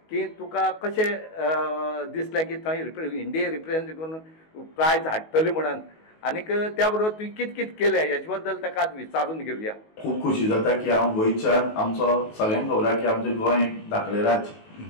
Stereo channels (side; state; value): right; late; 19 ms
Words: की तुका कशें दिसलें की थंय इंडिये रिप्रेजेंट करून प्रायज हाडटली म्हणून आनीक त्या बरोबर तुवें कित केलें हेचे बद्दल ताका आज विचारून घेवया. खूब खुशी जाता की हांव गोंयच्यान आमचो सगळ्यांक खबर आसा की आमचें गोंय एक धाकलें राज्य